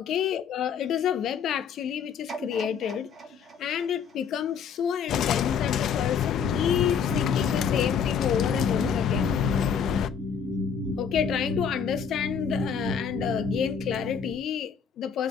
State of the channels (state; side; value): quieter; right; 7.1 dB